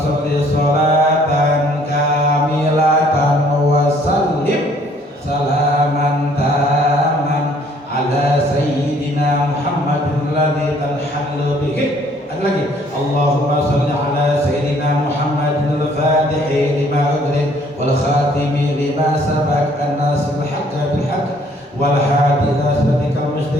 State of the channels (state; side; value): normal; both; correlation 0.61